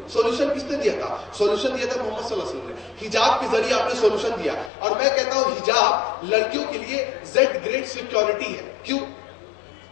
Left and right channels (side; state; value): right; drops out; at 4.7 s